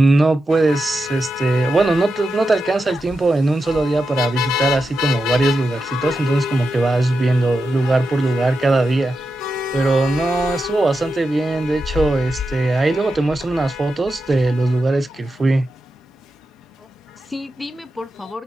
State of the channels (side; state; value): both; normal; correlation 0.89